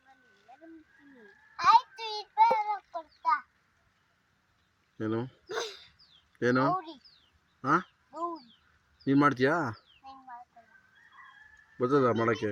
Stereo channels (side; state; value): both; identical; correlation 1.00